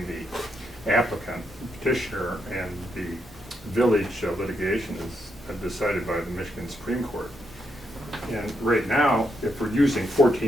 the applicant, petitioner, and the village litigation is decided by the Michigan Supreme Court. And right now, if we're using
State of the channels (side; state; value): both; normal; correlation 0.80